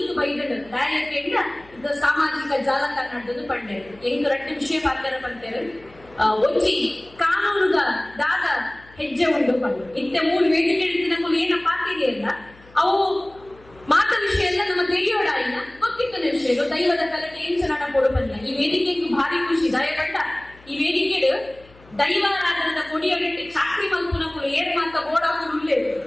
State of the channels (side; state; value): left; noise; hum, 25 dB below the sound